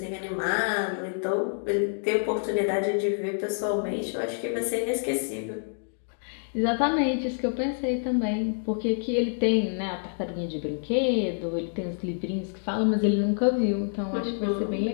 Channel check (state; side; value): silent; right; digital silence